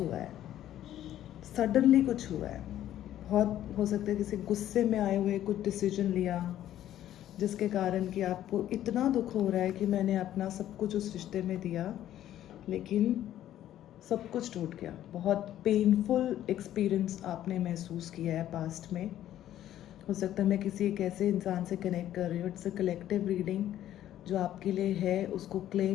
है, सडनली कुछ हुआ है। बहुत हो सकता है किसी गुस्से में आए हुए कुछ डिसीजन लिया, जिसके कारण कि आपको इतना दुख हो रहा है कि मैंने अपना सब कुछ उस रिश्ते में दिया, लेकिन सब कुछ टूट गया। बहुत पेनफुल एक्सपीरियंस आपने महसूस किया है पास्ट में। हो सकता है मैं किसी एक ऐसे इंसान से कनेक्ट कर रही हूँ। It's a collective reading. जो आपके लिए है उसको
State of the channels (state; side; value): quieter; right; 12.2 dB